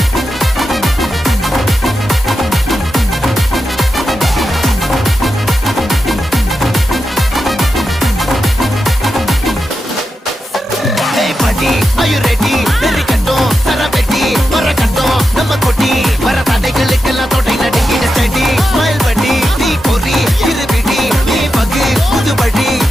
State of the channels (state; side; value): normal; both; correlation 0.89